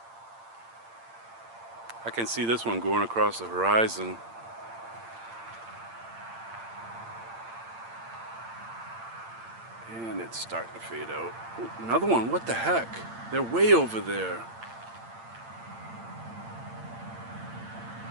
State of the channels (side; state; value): left; late; 8.8 ms